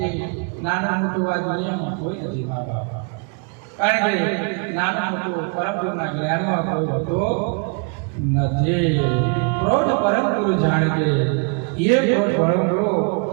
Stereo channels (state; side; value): quieter; left; 36.5 dB